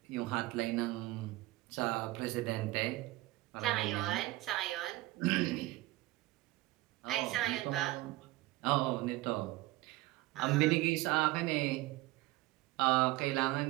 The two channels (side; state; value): left; quieter; 18.6 dB